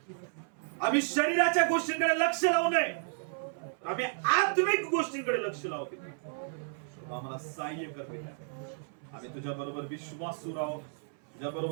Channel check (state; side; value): silent; left; 56 dB below the other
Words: आम्ही शरीराच्या गोष्टींकडे लक्ष लावू नये, आम्ही आत्मिक गोष्टींकडे लक्ष लावू. आम्हाला सहाय्य कर. आम्ही तुझ्या बरोबर विश्वासू राहू, तुझ्या